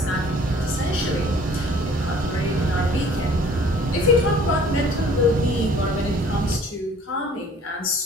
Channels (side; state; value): both; normal; correlation 0.53